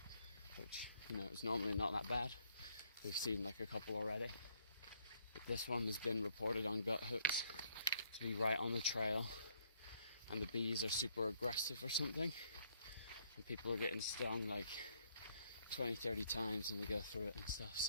which, you know, is normally not that bad. We've seen like a couple already. But this one has been reported on gut hooks to be right on the trail, and the bees are super aggressive or something, and people are getting stung like 20-30 times when they go through it and stuff.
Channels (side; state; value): both; inverted; correlation -0.68